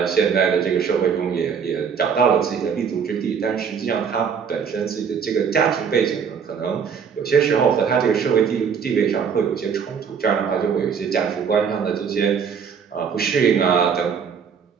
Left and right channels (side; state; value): left; quieter; 6.7 dB